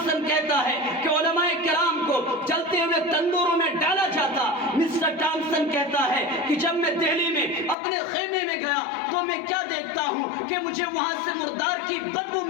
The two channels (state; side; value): drops out; right; at 7.8 s